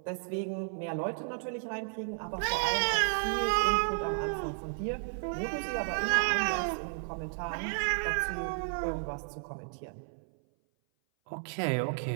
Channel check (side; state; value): left; silent; 56 dB below the other